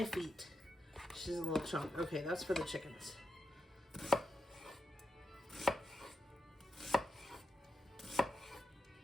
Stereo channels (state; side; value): normal; both; correlation 0.87